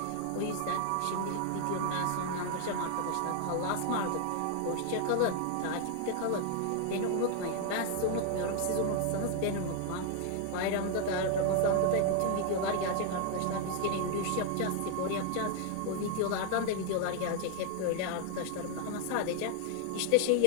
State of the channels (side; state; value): both; different; correlation 0.00